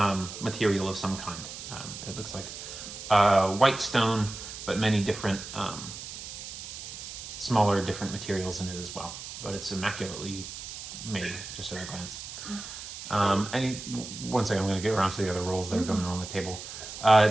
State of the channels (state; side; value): noise; right; hiss, 10 dB below the sound